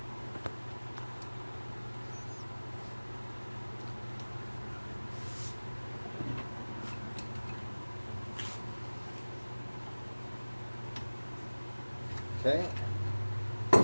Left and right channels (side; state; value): both; inverted; correlation -1.00